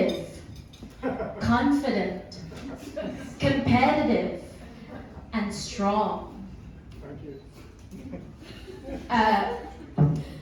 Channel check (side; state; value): both; identical; correlation 1.00